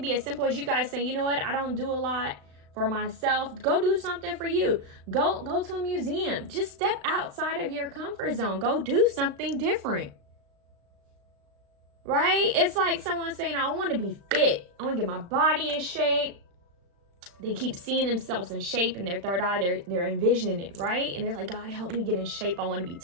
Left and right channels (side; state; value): left; late; 35 ms